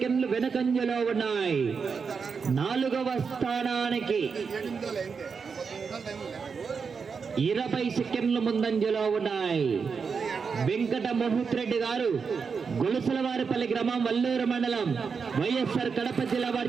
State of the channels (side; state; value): left; quieter; 5.6 dB